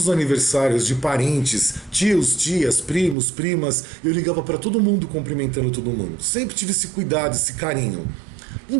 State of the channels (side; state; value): left; drops out; at 3.2 s